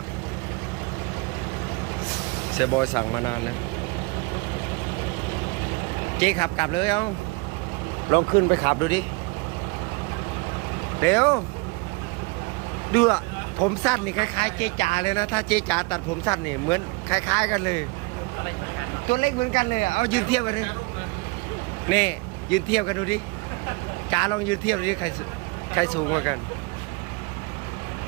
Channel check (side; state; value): left; quieter; 27.3 dB